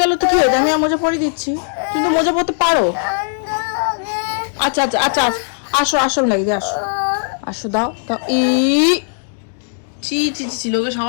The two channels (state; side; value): silent; right; digital silence